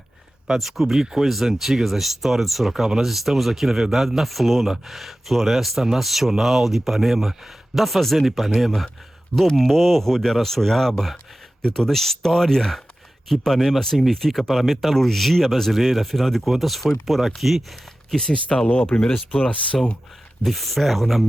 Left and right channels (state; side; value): normal; both; correlation 0.95